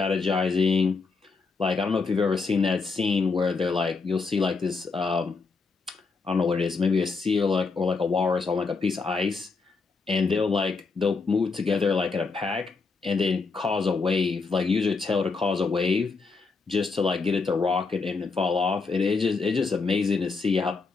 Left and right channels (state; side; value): quieter; right; 4.4 dB